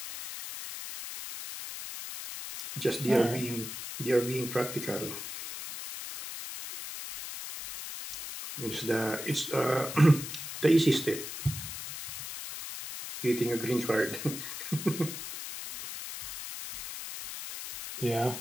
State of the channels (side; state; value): left; noise; hiss, 8 dB below the sound